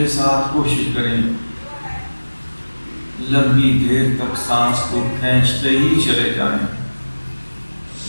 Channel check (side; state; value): both; inverted; correlation -1.00